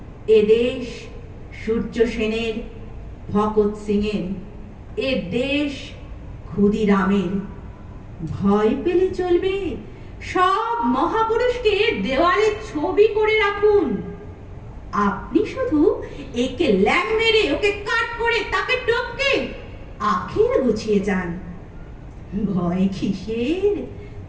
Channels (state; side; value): identical; both; correlation 1.00